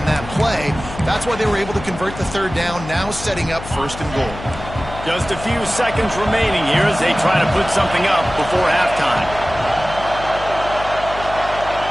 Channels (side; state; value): left; noise; hum, 12 dB below the sound